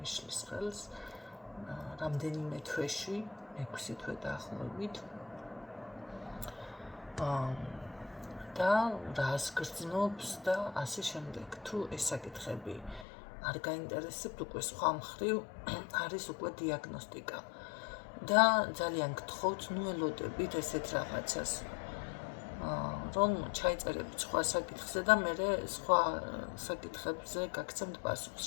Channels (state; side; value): drops out; right; at 13.1 s